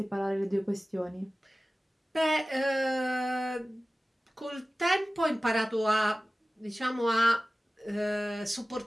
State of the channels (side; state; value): both; normal; correlation 0.97